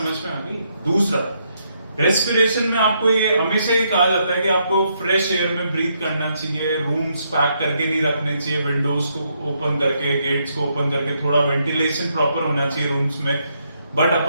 में आ गई? दूसरा, रेस्पिरेशन में आपको ये हमेशा ही कहा जाता है कि आपको फ्रेश एयर में ब्रीथ करना चाहिए, रूम्स पैक करके नहीं रखने चाहिए, विंडोज को ओपन करके, गेट्स को ओपन करके, थोड़ा वेंटिलेशन प्रॉपर होना चाहिए रूम्स में। बट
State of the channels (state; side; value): inverted; both; correlation -0.76